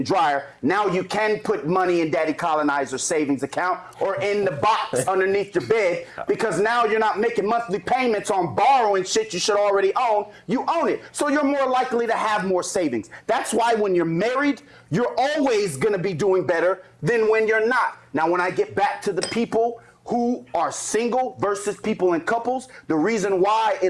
dryer. Now you can put money in Daddy Colonizer's savings account or in the box underneath your bed, because now you're not making monthly payments on borrowing shit you should already own. You own it. So you're more likely to have more savings. That's why when you're married, you're always gonna be doing better than when you're not. Now, when I get back to the people who are single versus people in couples, the reason why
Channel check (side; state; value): both; identical; correlation 1.00